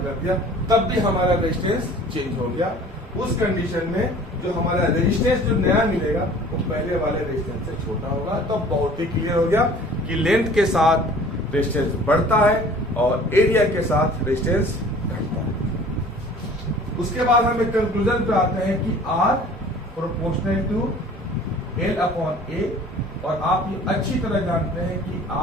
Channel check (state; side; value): normal; both; correlation 0.48